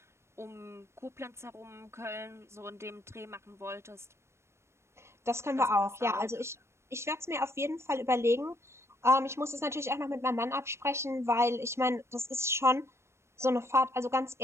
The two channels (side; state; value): left; late; 0.13 ms